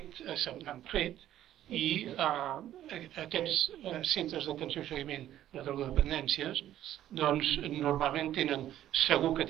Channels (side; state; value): left; quieter; 12.3 dB